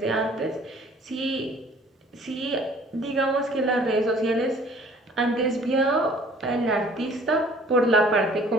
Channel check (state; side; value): normal; both; correlation 0.54